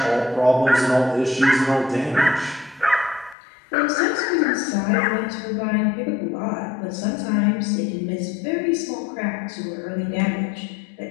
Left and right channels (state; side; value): drops out; right; at 3.4 s